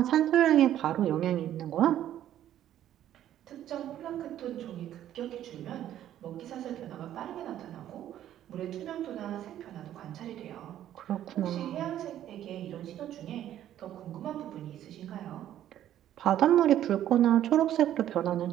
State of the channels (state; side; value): quieter; left; 11.7 dB